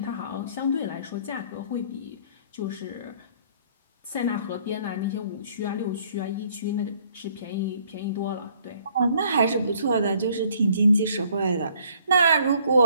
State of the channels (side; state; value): both; inverted; correlation -0.62